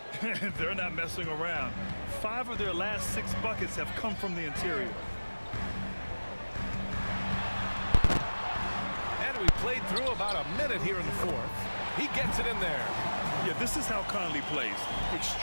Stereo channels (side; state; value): both; inverted; correlation -1.00